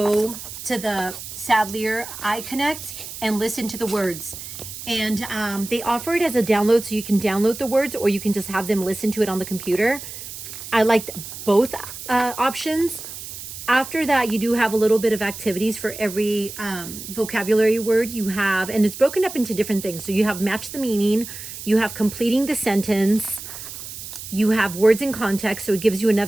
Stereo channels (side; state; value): right; noise; hiss, 11 dB below the sound